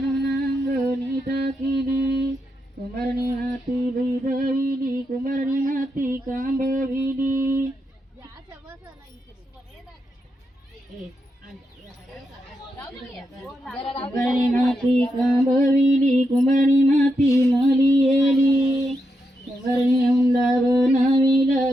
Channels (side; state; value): both; normal; correlation 0.84